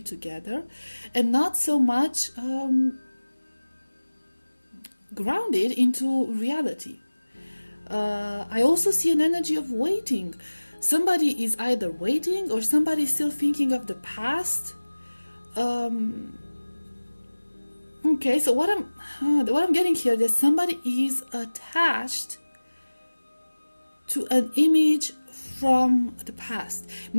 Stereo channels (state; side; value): inverted; both; correlation -1.00